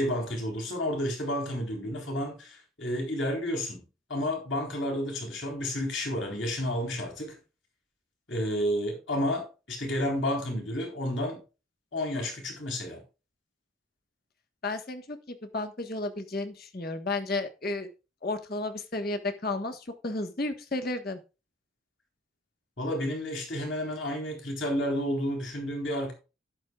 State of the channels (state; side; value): normal; both; correlation 0.46